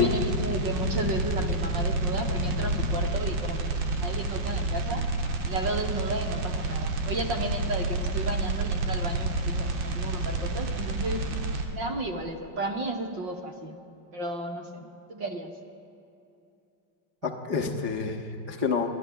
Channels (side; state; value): left; late; 5.0 ms